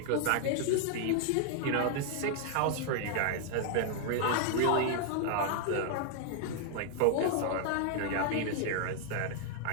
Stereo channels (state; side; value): different; both; correlation 0.00